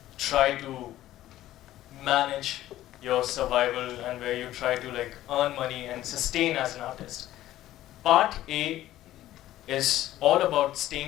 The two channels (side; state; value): right; quieter; 14.1 dB